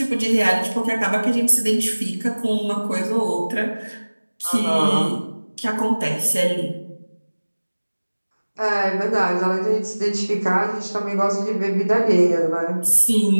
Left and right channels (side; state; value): both; inverted; correlation -1.00